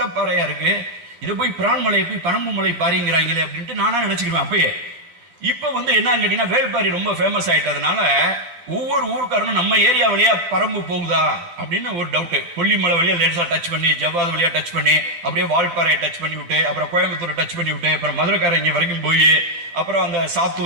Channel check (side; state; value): left; late; 10 ms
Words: இருக்கு, இதை போய் பிரான்மலை போய் பரம்பு மலை பாரிங்கிறாங்களே அப்படின்ட்டு நானா நினைச்சுக்குவேன் அப்பயே. இப்ப வந்து என்னன்னு கேட்டீங்கன்னா, வேள்பாரி ரொம்ப ஃபேமஸ் ஆயிட்டதுனால ஒவ்வொரு ஊருக்காரனும் நம்ம ஏரியா வழியா பரம்பு போகுதா அப்படின்னு ஒரு டவுட். கொல்லிமலை வழியா லேசா டச் பண்ணி, ஜவ்வாது வழியா டச் பண்ணி, அப்படியே வால்பாறையை டச் பண்ணி விட்டு, அப்புறம் கோயம்புத்தூரை டச் பண்ணி விட்டு, அப்புறம் மதுரைக்காரங்க வரைக்கும் போய், அப்புறம் அந்த